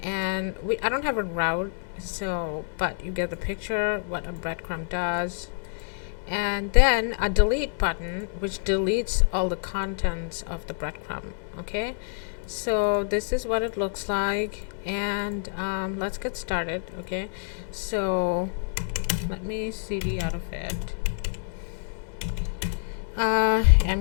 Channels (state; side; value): silent; right; digital silence